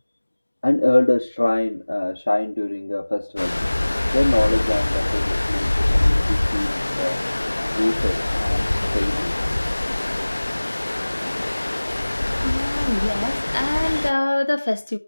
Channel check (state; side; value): inverted; both; correlation -1.00